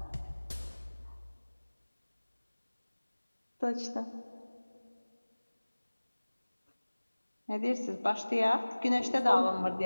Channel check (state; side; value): inverted; both; correlation -1.00